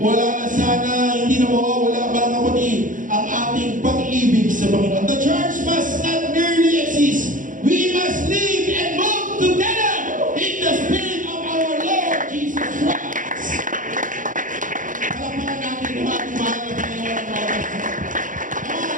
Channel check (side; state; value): left; late; 0.38 ms